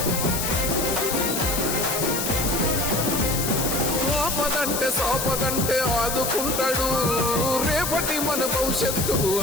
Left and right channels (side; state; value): left; noise; hiss, 2 dB below the sound